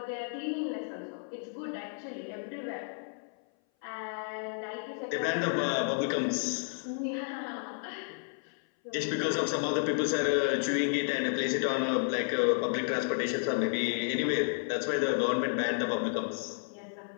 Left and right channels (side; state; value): right; silent; 57 dB below the other